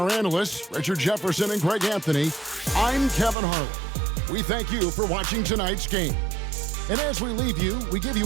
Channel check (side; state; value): left; drops out; at 3.4 s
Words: analysts, Richard Jefferson and Greg Anthony, I'm Kevin Harlan. We thank you for watching tonight's game. And as we leave you, we give